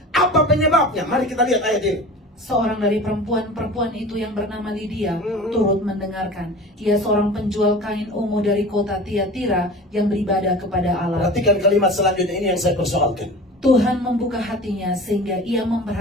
Apa penyebabnya? Mari kita lihat ayat ini. Seorang dari perempuan itu yang bernama Lydia turut mendengarkan. Ia seorang penjual kain ungu dari kota Tiatira yang beribadah kepada Allah. Perhatikan kalimat selanjutnya, ini yang saya persoalkan. Tuhan membuka hatinya sehingga ia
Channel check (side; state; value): both; normal; correlation 0.37